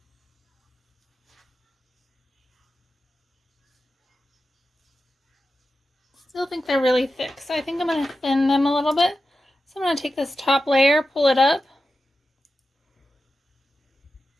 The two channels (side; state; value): both; normal; correlation 0.91